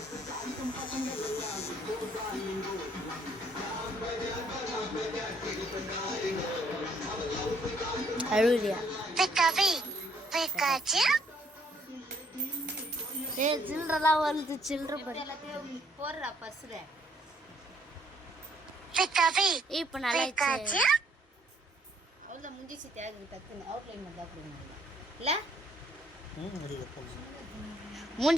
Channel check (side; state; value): both; normal; correlation 0.66